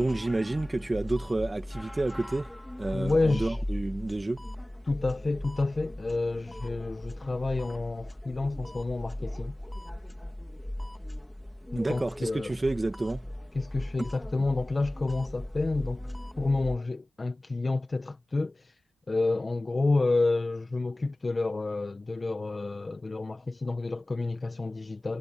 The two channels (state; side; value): normal; both; correlation 0.97